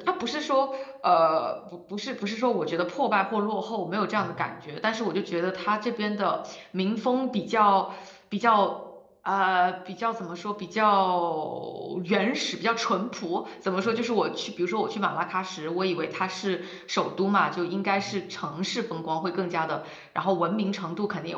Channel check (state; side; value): identical; both; correlation 1.00